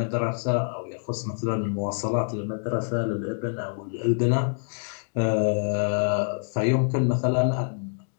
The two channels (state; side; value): silent; right; digital silence